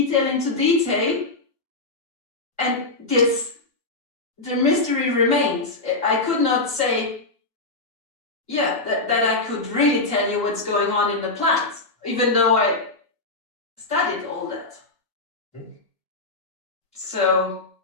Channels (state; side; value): quieter; right; 3.2 dB